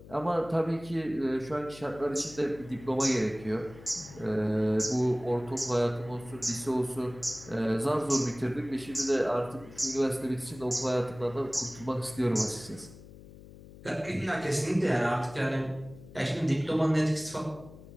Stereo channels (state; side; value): noise; left; hum, 18 dB below the sound